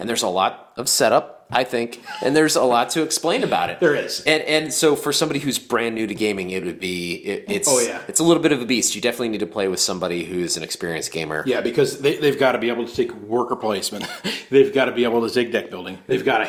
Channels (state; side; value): identical; both; correlation 1.00